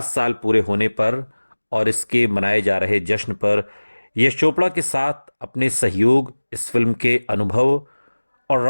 साल पूरे होने पर और इसके मनाए जा रहे जश्न पर यश चोपड़ा के साथ अपने सहयोग, इस फिल्म के अनुभव और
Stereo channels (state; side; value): inverted; both; correlation -1.00